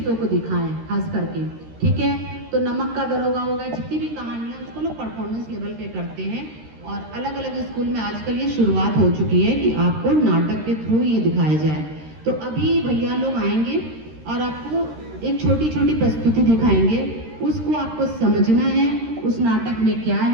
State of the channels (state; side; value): late; left; 13 ms